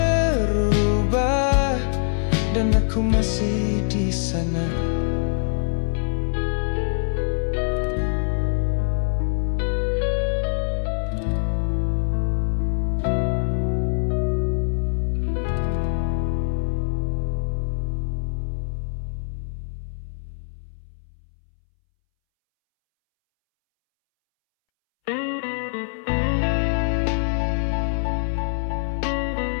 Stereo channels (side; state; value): right; silent; 63 dB below the other